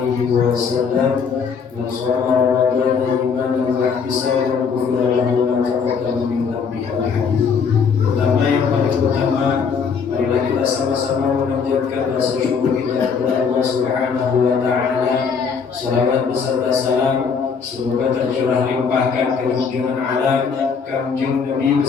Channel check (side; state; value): right; quieter; 6.0 dB